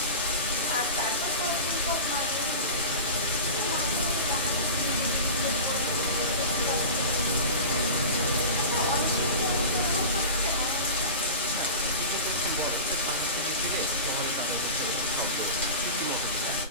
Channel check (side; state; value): both; inverted; correlation -0.30